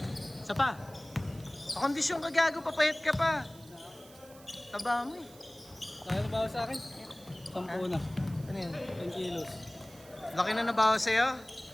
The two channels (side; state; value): right; noise; hiss, 22 dB below the sound